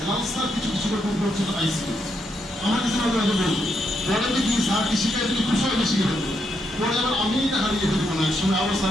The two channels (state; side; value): normal; both; correlation 0.79